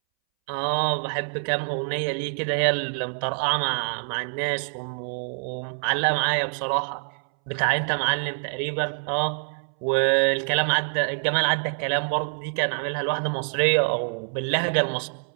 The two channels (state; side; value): silent; left; 61 dB below the other